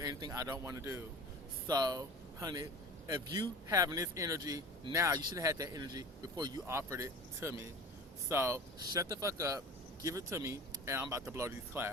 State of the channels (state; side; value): normal; both; correlation 0.37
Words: I don't want to do. So, honey, if you having this energy now, you should have had that energy before you offered it to me. So, shut the fuck up, give it to me, and I'm about to blow these